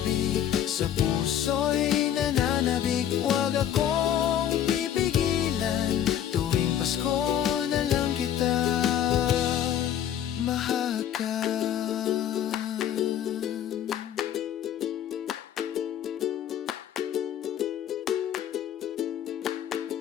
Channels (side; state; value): right; quieter; 10.3 dB